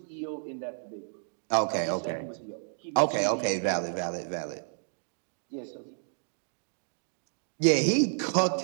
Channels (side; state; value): left; silent; digital silence